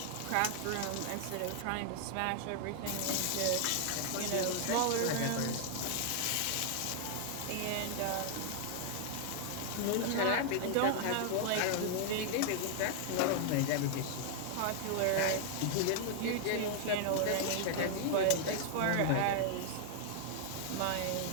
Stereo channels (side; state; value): both; different; correlation 0.00